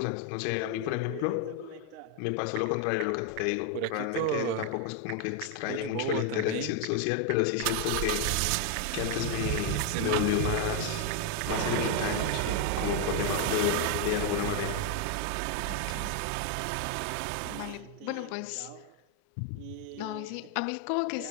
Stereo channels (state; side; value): different; both; correlation 0.01